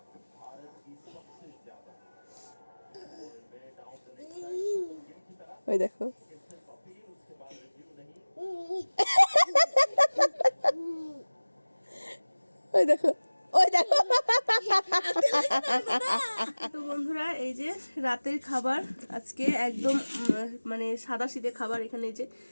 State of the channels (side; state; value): both; inverted; correlation -1.00